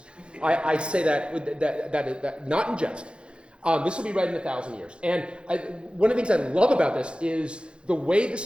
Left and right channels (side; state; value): left; late; 0.056 ms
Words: I say that not in jest. This will be read in 1,000 years. And one of the things I love about this is the way